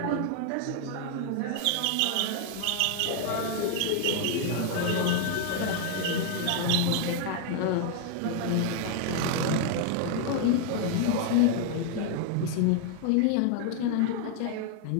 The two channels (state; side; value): different; both; correlation 0.00